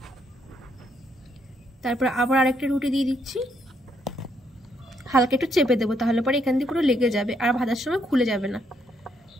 তারপর আবার আরেকটা রুটি দিয়ে দিচ্ছি। হালকা একটু চেপে দেবো, তাহলে পরে এখান দিয়ে পুরো লেগে যাবে আর ভাজার সময় খুলে যাবে না।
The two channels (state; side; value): normal; both; correlation 0.73